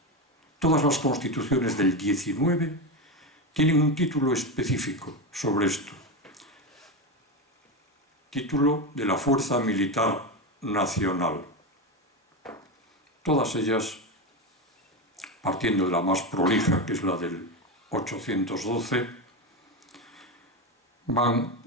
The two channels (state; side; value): normal; both; correlation 0.16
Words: Todas las constituciones del 19 tienen un título específico sobre esto. Título de la Fuerza Militar Nacional. Todas ellas, partiendo de la más prolija, que es la del 812, van